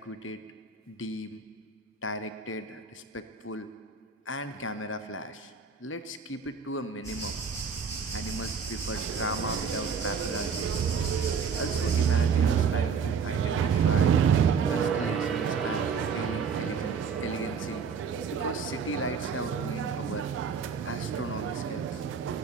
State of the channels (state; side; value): quieter; left; 5.8 dB